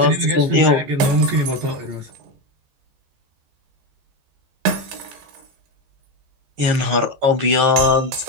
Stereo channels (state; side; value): late; left; 14 ms